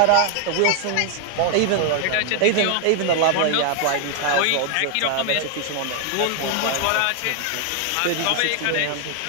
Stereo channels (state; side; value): different; both; correlation 0.00